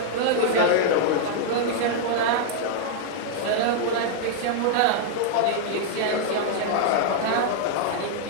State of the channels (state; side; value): different; both; correlation -0.01